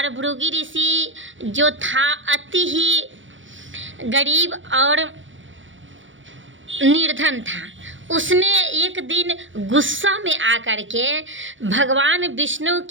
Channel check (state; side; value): late; left; 0.56 ms